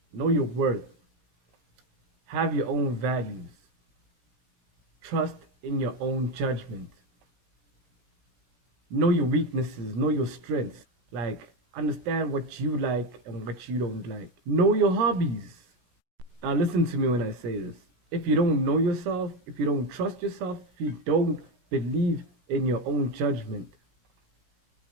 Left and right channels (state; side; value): late; left; 17 ms